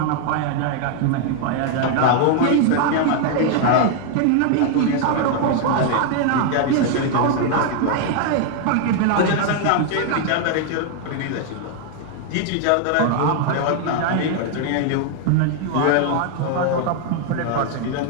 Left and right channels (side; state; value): both; different; correlation 0.00